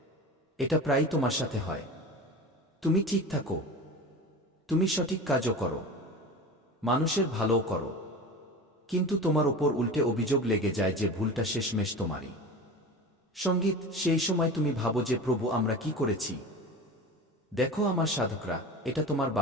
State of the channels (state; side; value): normal; both; correlation 0.32